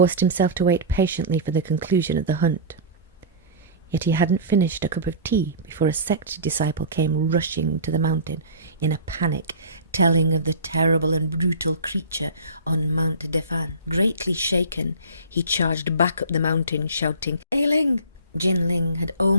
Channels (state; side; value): inverted; both; correlation -0.34